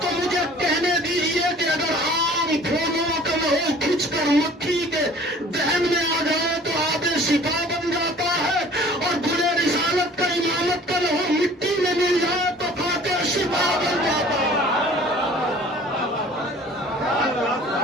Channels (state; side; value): normal; both; correlation 0.49